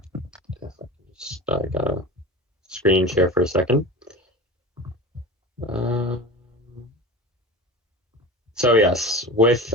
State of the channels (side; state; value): both; normal; correlation 0.33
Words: gotta screen share for a second. So yes, with